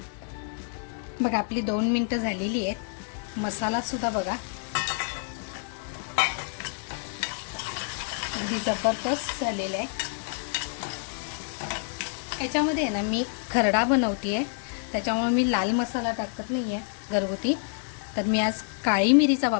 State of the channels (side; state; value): right; silent; 59 dB below the other